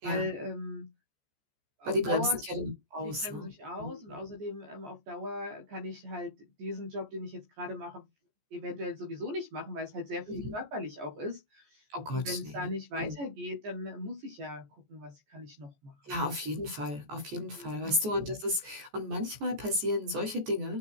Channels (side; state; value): left; late; 14 ms